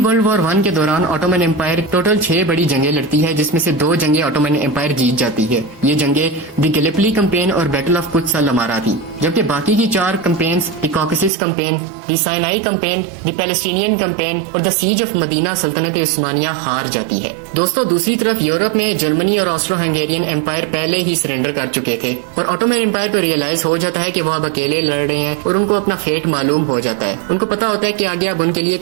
وار 1 کے دوران آٹومن امپائر ٹوٹل 6 بڑی جنگیں لڑتی ہے، جس میں سے 2 جنگیں آٹومن امپائر جیت جاتی ہے۔ یہ جنگیں دی گیلیپلی کمپین اور بیٹل آف قدس الامارہ تھی، جبکہ باقی کی 4 کمپینز دی کاکسس کمپین، دی سائنائی کمپین، دی پیلسٹینین کمپین اور دا سیج آف مدینہ سلطنت عثمانیہ ہار جاتی ہے۔ دوستوں دوسری طرف یورپ میں جرمنی اور آسٹرو ہنگیرین امپائر پہلے ہی سرنڈر کر چکے تھے، اور آٹومن امپائر کو ریئلائز ہو جاتا ہے کہ وہ اب اکیلے لڑ رہے ہیں اور ان کو اپنا فیٹ معلوم ہو جاتا ہے۔ ان کو پتا ہوتا ہے کہ آگے اب ان کے لیے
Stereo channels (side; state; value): left; drops out; at 11.3 s